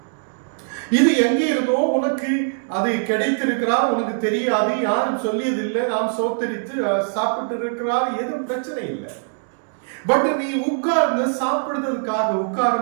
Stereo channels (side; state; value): left; silent; digital silence